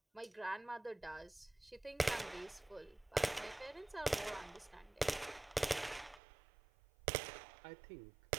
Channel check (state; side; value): drops out; left; at 6.2 s